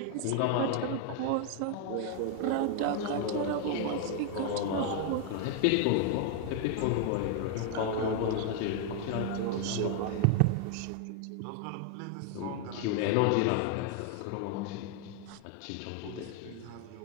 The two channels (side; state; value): both; different; correlation 0.00